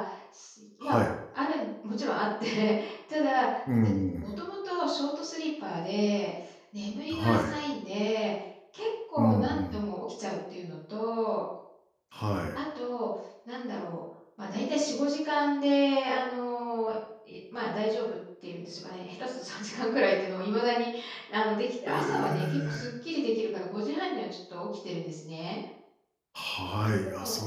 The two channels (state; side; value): identical; both; correlation 1.00